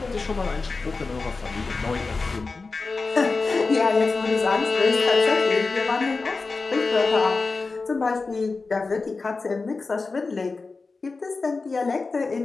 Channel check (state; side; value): quieter; right; 4.0 dB